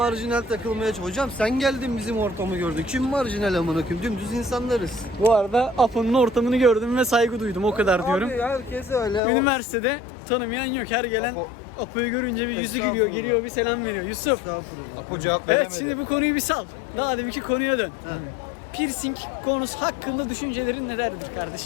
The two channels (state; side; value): drops out; right; at 9.2 s